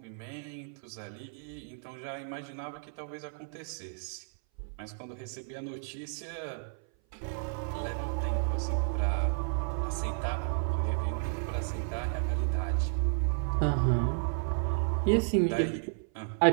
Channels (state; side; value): silent; left; 56 dB below the other